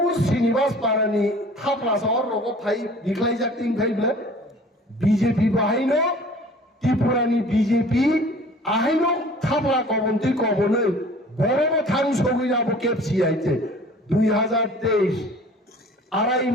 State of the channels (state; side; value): normal; both; correlation 0.47